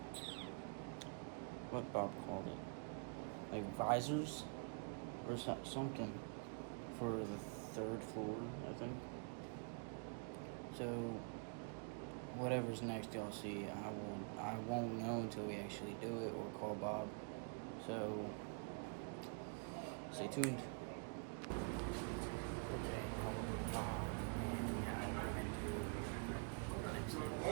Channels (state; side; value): quieter; left; 39.8 dB